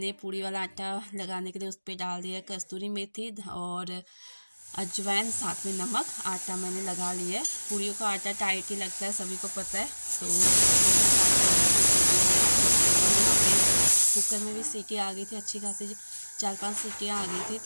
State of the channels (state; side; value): inverted; both; correlation -1.00